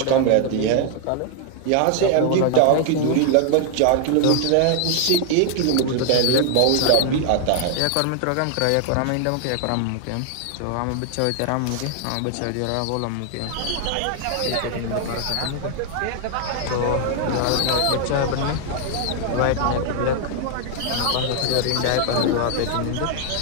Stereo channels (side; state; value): both; different; correlation 0.00